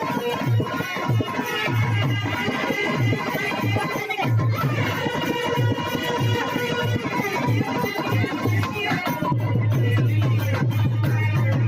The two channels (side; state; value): both; identical; correlation 1.00